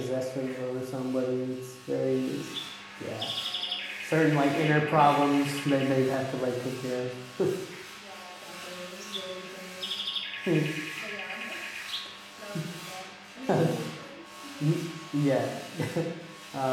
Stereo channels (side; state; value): both; identical; correlation 1.00